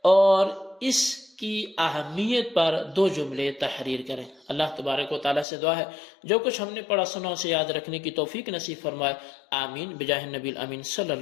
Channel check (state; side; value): drops out; right; at 5.5 s